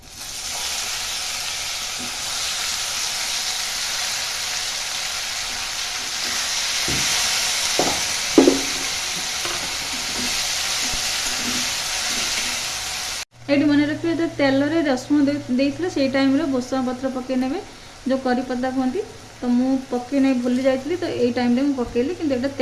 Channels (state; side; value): identical; both; correlation 1.00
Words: ये मन रखिए जो तेल रे रसुण देते से टाइम भूसंग पत्र पकईने जो करी पत्ता कहती तो मु पकई नहीं भूली जाइली। तो ये टाइम रे पकईली कि